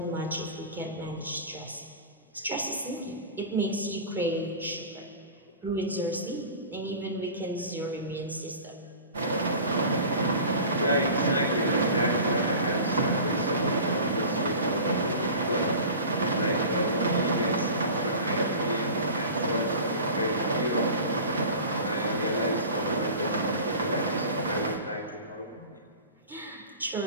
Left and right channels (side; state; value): both; inverted; correlation -0.38